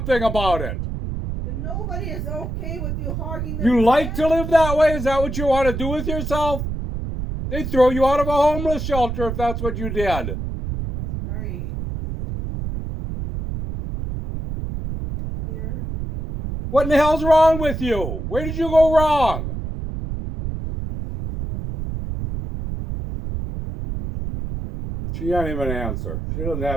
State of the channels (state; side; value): noise; right; rumble, 5 dB below the sound